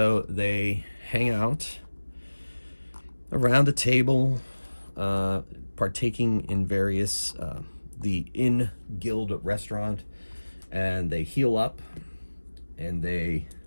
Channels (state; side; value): inverted; both; correlation -1.00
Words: they hang out around a table, partaking in various, the in-guild restaurant, and they heal up, and they